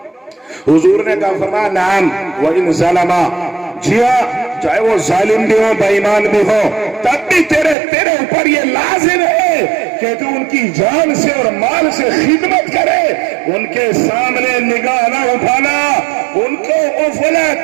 حضور نے کہا فرمایا نعم وَإِنْ ظَلَمَا, جی ہاں چاہے وہ ظالم بھی ہو بے ایمان بھی ہو, تب بھی تیرے اوپر یہ لازم ہے کہ تو ان کی جان سے اور مال سے خدمت کرے, ان کے سامنے نگاہ نہ اٹھانا, ان کو اف ولا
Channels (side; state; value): left; drops out; at 7.8 s